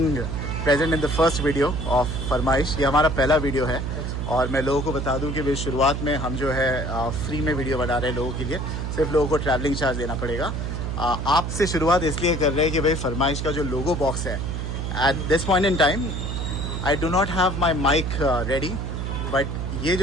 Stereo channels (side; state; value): right; noise; hum, 3 dB below the sound